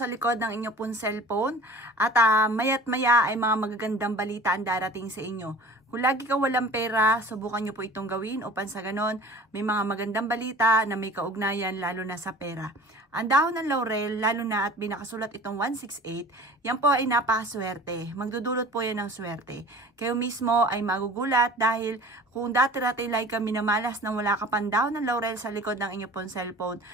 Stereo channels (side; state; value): both; normal; correlation 0.43